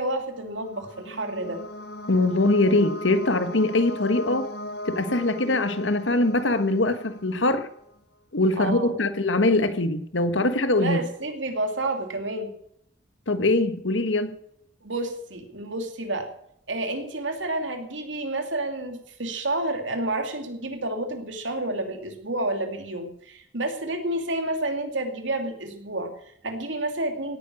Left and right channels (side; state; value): both; normal; correlation 0.12